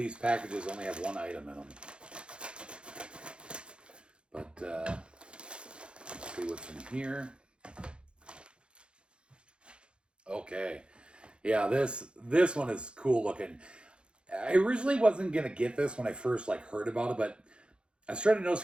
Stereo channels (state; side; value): late; left; 0.055 ms